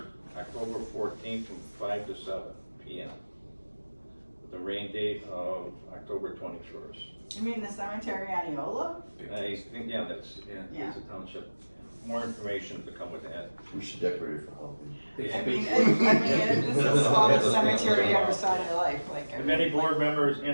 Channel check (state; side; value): inverted; both; correlation -1.00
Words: October 14th from 5 to 7 p.m. with the rain date of October 21st. You mean the cemetery on Eola? I think, yeah, it's a township. More information to come with that. We should decorate it for Halloween. I mean, this is the smallest cemetery you ever saw in your life, like. If any board member is